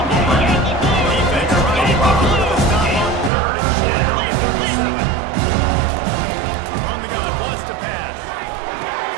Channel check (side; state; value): left; drops out; at 3.3 s